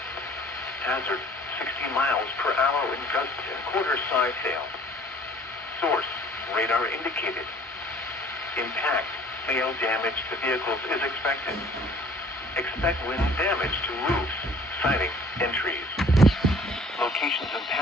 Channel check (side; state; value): both; normal; correlation 0.53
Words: Hazard: 60 miles per hour in gusts and quarter-size hail. Source: radar indicated. Impact: hail damage to vehicles is expected. Expect wind damage to roofs, siding, and trees. Locations